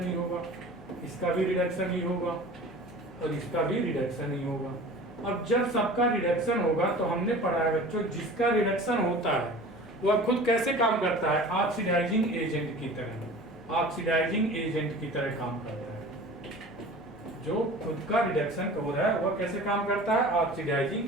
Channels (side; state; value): both; normal; correlation 0.40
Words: ही होगा। इसका भी रिडक्शन ही होगा और इसका भी रिडक्शन ही होगा। अब जब सबका रिडक्शन होगा तो हमने पढ़ा है बच्चों, जिसका रिडक्शन होता है वह खुद कैसे काम करता है? ऑक्सीडाइजिंग एजेंट की तरह, ऑक्सीडाइजिंग एजेंट की तरह काम करता है। जो खुद का रिडक्शन हो रहा है वह कैसे काम करता है?